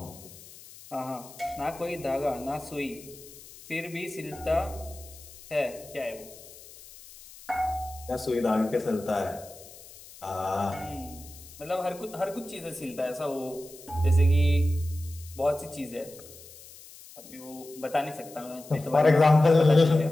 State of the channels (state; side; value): noise; left; hiss, 19 dB below the sound